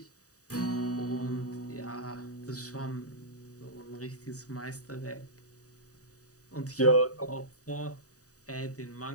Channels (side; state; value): right; late; 0.66 ms